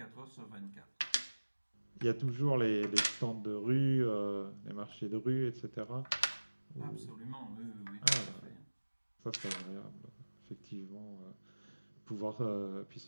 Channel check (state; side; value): inverted; both; correlation -1.00